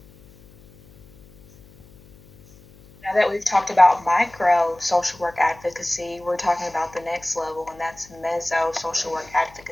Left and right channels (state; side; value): noise; left; hum, 25 dB below the sound